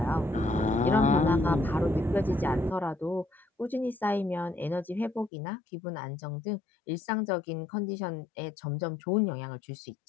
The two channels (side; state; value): right; drops out; at 5.3 s